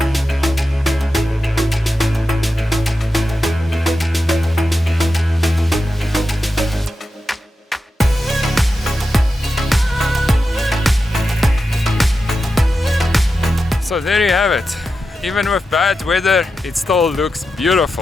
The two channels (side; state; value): both; normal; correlation 0.90